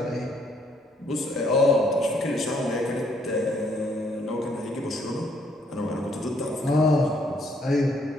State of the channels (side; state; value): both; normal; correlation 0.68